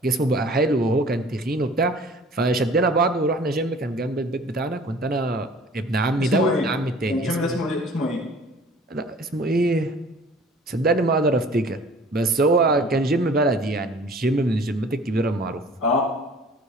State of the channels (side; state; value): both; normal; correlation 0.49